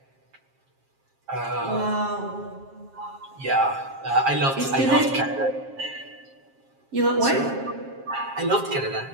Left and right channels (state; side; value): late; left; 7.4 ms